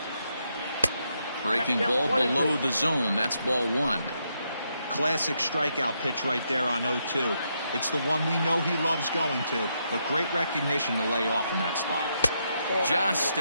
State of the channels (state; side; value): inverted; both; correlation -0.80